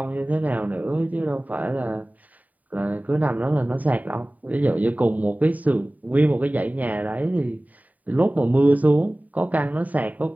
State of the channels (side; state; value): left; late; 0.074 ms